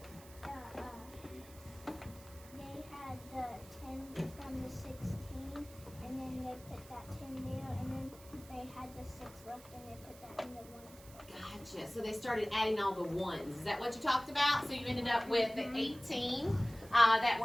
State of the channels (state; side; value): noise; right; hiss, 20 dB below the sound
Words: they had the 10 from the 16, and then they put that 10 there, and then they had the 6 left, and they put that in the 1. Gotcha. So they started adding all the ones. Is that what you talked about? So you ended up with the 18 that